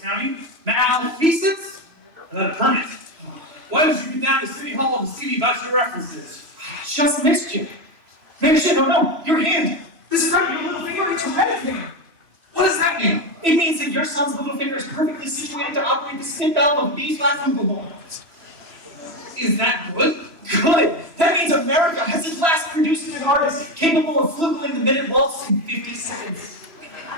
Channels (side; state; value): left; late; 3.0 ms